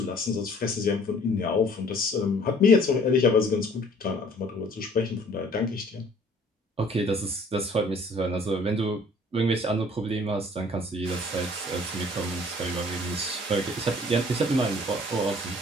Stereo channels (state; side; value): normal; both; correlation 0.55